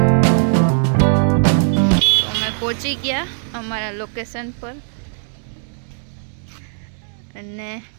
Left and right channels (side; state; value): left; silent; digital silence